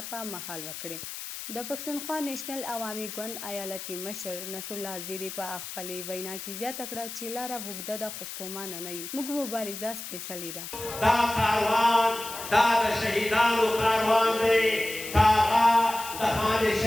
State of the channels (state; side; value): noise; left; hiss, 9 dB below the sound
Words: په مهال وکړې. د پښتونخوا نیشنل عوامي ګوند ایالتي مشر نصر الله زیري په خپلې وینا کې زیاته کړه چې لاره اوږده ده خو ستومانه نه یو. موږ مبارزه سپېڅلې ده. دا کاروان دا د شهیدانو کاروان دی. هغه د خان